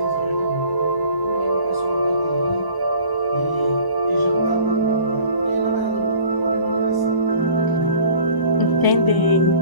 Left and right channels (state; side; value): late; right; 1.0 ms